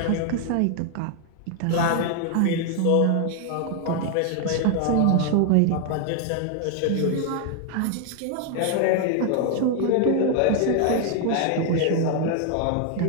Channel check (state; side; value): different; both; correlation 0.00